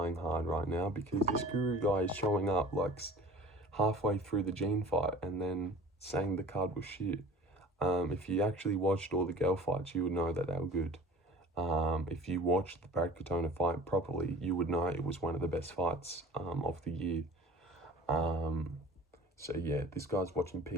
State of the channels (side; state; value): both; normal; correlation 0.44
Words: hard right now, because this Guru guy is showing up like halfway through the Gene fight and then saying the card was shit. If you actually watched all the girl fights, you would know that they were good. If you watched the Brad Katona fight properly, you would know it was one of the best fights of the year. So yeah, this guy's watching